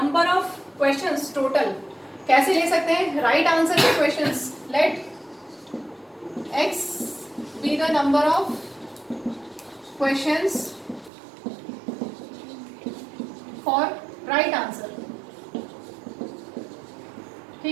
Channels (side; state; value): left; drops out; at 11.1 s